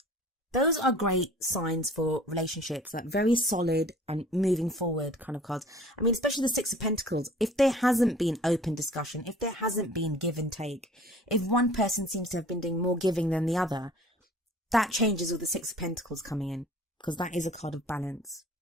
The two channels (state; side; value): normal; both; correlation 0.49